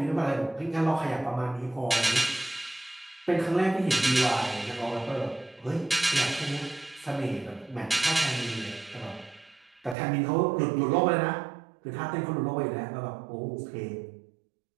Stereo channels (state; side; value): drops out; left; at 10.0 s